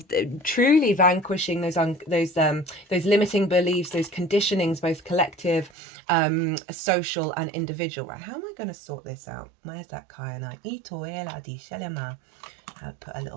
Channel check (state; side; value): drops out; left; at 5.7 s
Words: truly vanquishing those limiting beliefs, those conditionings, both collective, social and individual. Right, how am I going to sort this out? Where's that kyanite? I'll put a